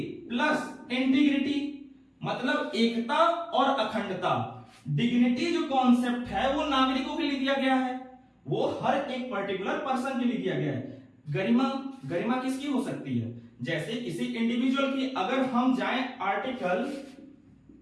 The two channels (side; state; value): both; identical; correlation 1.00